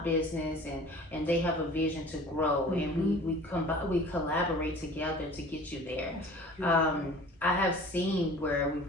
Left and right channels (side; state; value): both; normal; correlation 0.44